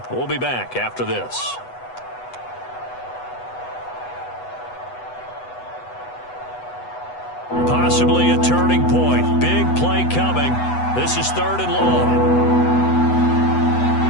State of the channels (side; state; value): right; late; 8.1 ms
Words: We'll be back after this. Possibly a turning point. Big play coming. This is 3rd and long.